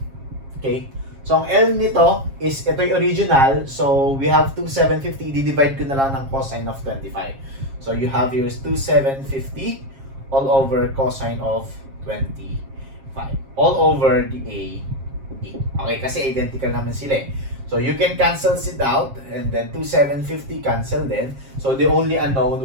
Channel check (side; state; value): left; late; 7.4 ms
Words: okay? So, ang L nito is, ito yung original. So, we have 2,750. I-divide ko na lang ng cosine of 25. So, you have here is 2,750 all over cosine of 25. all over the A, E. Okay, kasi identical naman sila eh. So you can cancel it out, and then 2750 cancel then. So the only unknown